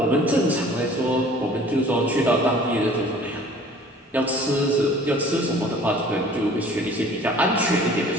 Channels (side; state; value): both; normal; correlation 0.50